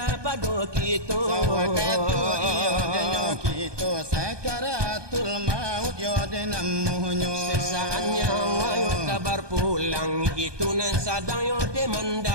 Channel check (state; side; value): late; left; 1.2 ms